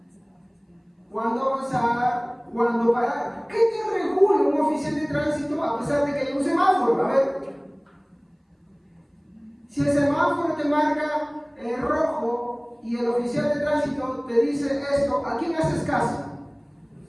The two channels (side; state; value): both; identical; correlation 1.00